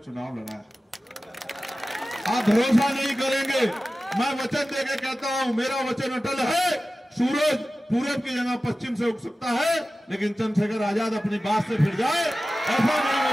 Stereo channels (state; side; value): normal; both; correlation 0.95